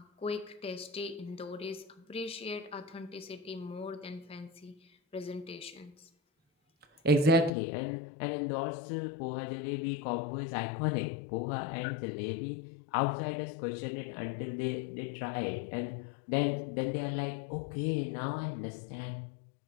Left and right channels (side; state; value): right; drops out; at 7.5 s